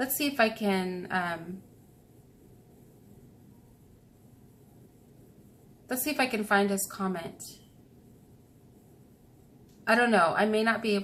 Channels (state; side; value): identical; both; correlation 1.00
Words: see if I can, let's see if I can find his comment. I don't know. I may not be